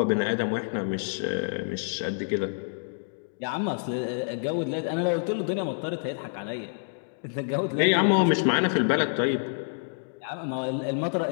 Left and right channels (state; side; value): silent; right; digital silence